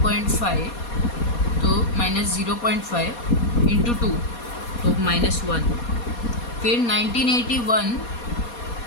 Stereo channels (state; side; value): late; right; 4.2 ms